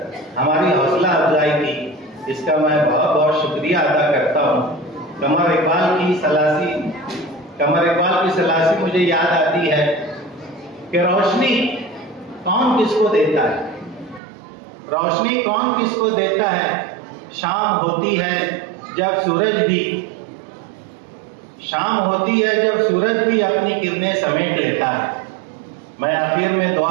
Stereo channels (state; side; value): drops out; left; at 14.2 s